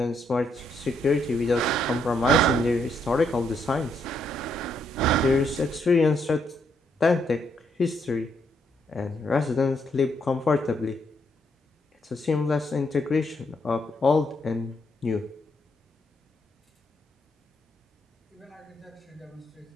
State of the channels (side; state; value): both; normal; correlation 0.75